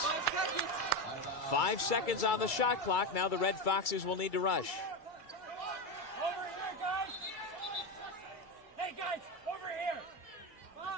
5 seconds on the shot clock. Now the Red Foxes will need to rush.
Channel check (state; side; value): late; right; 2.3 ms